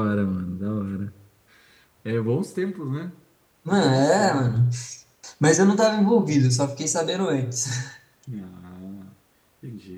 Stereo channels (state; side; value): identical; both; correlation 1.00